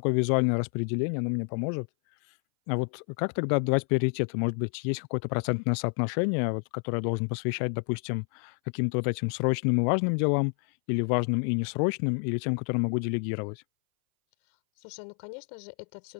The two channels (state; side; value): silent; right; 59 dB below the other